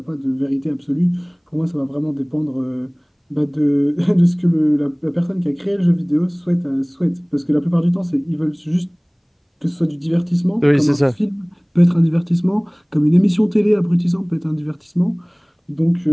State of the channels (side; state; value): both; identical; correlation 1.00